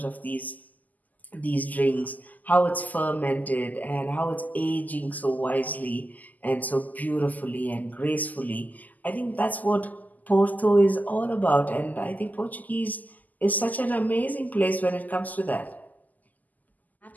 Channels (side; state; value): right; late; 0.081 ms